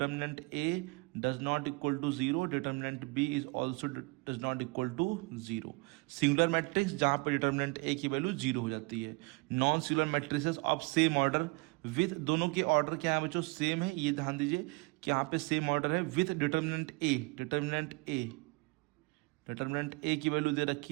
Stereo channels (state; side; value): quieter; left; 28.2 dB